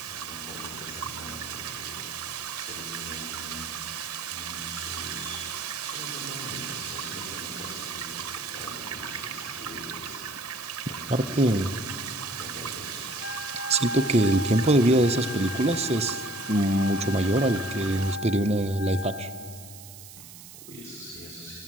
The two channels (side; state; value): right; noise; hiss, 16 dB below the sound